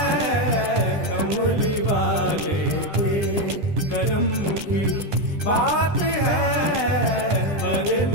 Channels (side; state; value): left; late; 10 ms